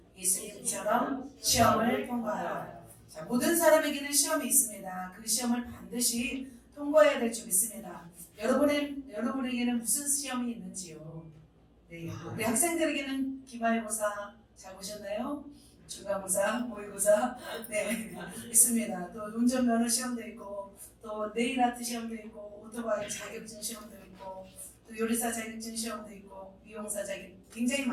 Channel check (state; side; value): identical; both; correlation 1.00